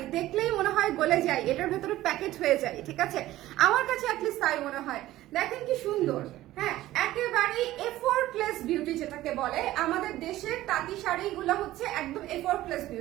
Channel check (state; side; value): quieter; left; 15.4 dB